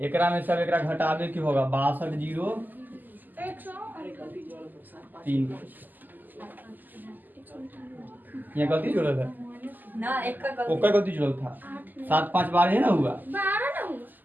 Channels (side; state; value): left; late; 0.086 ms